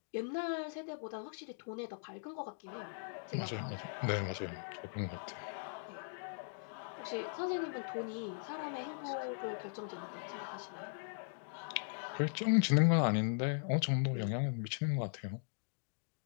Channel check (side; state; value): right; silent; digital silence